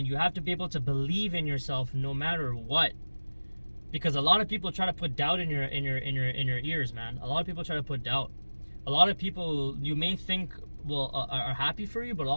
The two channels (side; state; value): both; inverted; correlation -1.00